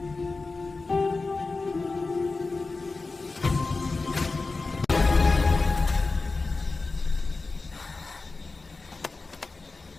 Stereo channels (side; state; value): right; quieter; 3.8 dB